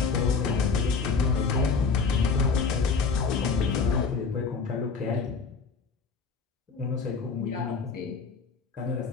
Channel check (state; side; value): quieter; right; 5.0 dB